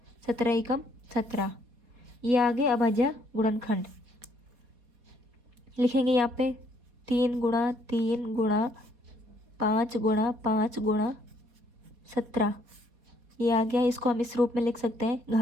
17 ही कम 17। ये आगे अभाज्य गुणनखंड लिखेंगे यहाँ पे, 3 गुणा 3 गुणा 5 गुणा 5 गुणा 17। ये आ गया, इसको हम इस रूप में लिख सकते हैं,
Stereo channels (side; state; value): left; late; 4.2 ms